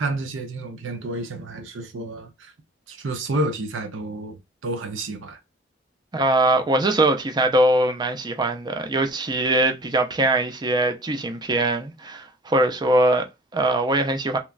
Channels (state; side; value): normal; both; correlation 0.44